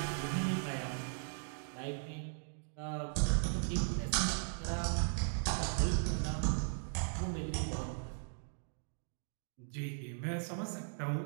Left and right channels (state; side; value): silent; left; digital silence